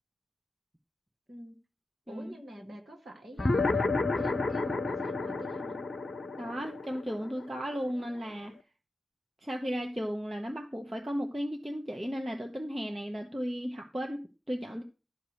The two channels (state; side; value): normal; both; correlation 0.91